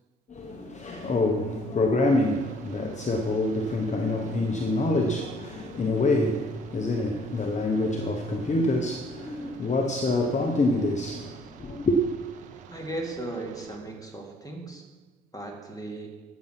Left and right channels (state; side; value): normal; both; correlation 0.62